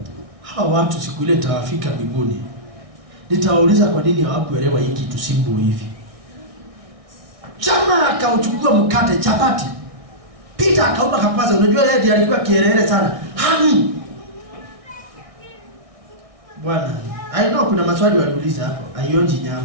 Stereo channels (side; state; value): left; late; 1.6 ms